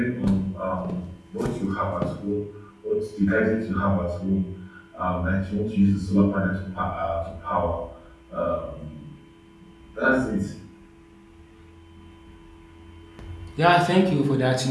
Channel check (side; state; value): both; identical; correlation 1.00